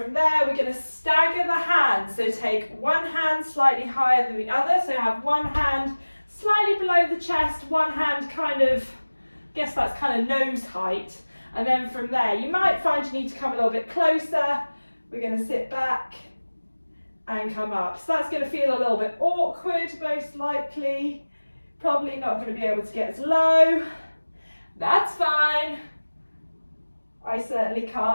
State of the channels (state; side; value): inverted; both; correlation -1.00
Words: there we're going to stagger the hands. So take one hand slightly higher than the other. So have one hand slightly below the chest, one hand kind of, I guess that's kind of nose height. And then from there, you might find you need to come a little bit closer. We're going to sit back and come up. So that's going to feel a little bit awkward, most likely. Probably not going to be able to get as low. That's fine. I certainly